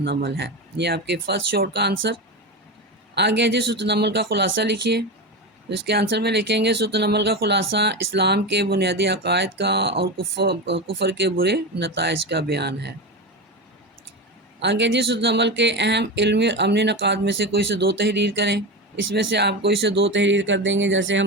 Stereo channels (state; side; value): normal; both; correlation 0.20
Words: ہے۔ یہ آپ کے فرسٹ شارٹ کا آنسر آ گیا جی۔ سورۃ النمل کا خلاصہ لکھیے، تو اس کے آنسر میں لکھیں گے سورۃ النمل کا خلاصہ اسلام کے بنیادی عقائد کا اور کفر کے برے نتائج کا بیان ہے۔ آگے جی، سورۃ النمل کے اہم علمی اور عملی نکات میں سے کوئی سے 2 تحریر کریں۔ اس میں سے آپ کوئی سے 2 تحریر کر دیں گے، جیسے